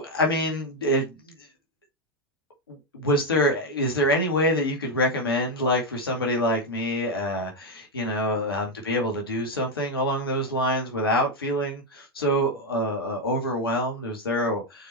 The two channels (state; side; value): normal; both; correlation 0.05